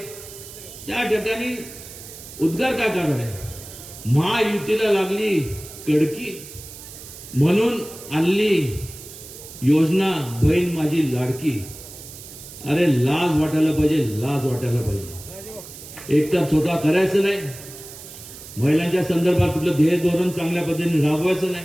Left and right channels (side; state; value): right; noise; hiss, 15 dB below the sound